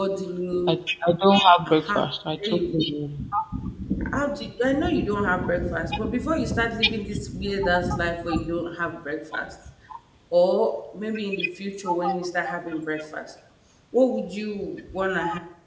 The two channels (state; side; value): identical; both; correlation 1.00